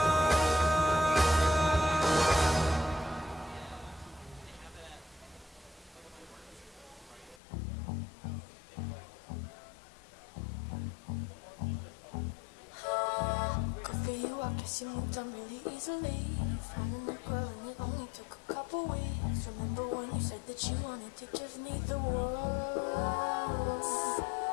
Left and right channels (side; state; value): right; drops out; at 7.4 s